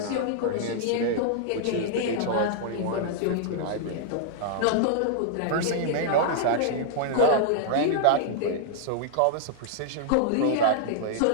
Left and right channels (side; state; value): both; different; correlation -0.01